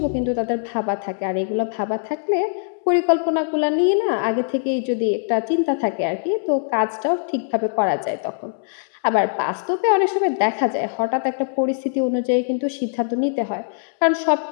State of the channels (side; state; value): right; silent; 64 dB below the other